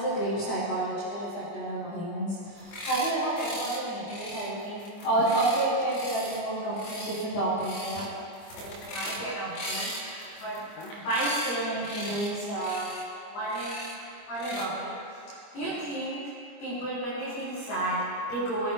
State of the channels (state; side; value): late; right; 25 ms